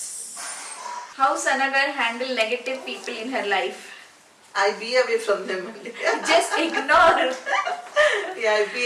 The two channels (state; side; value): identical; both; correlation 1.00